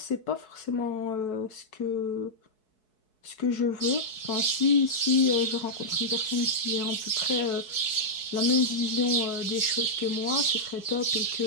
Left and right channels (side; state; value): right; late; 4.7 ms